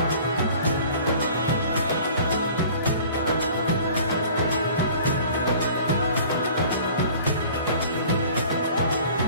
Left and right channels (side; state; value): both; inverted; correlation -0.47